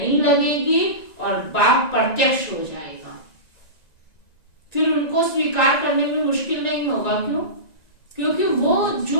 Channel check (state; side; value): late; right; 1.9 ms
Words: लगेगी और बाप प्रत्यक्ष हो जाएगा। फिर उनको स्वीकार करने में मुश्किल नहीं होगा। क्यों? क्योंकि वो